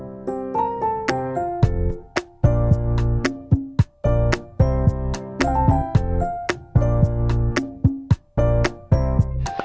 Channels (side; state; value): both; identical; correlation 1.00